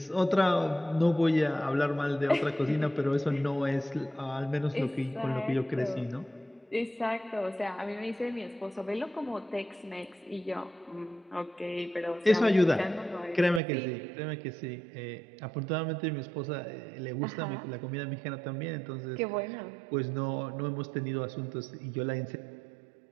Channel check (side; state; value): left; drops out; at 13.6 s